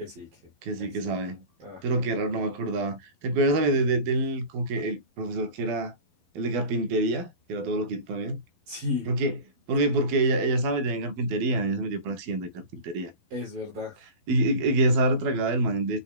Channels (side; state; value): left; late; 12 ms